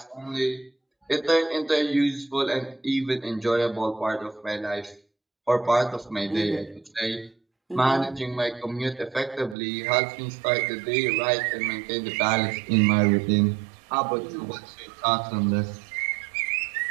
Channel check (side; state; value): left; drops out; at 9.6 s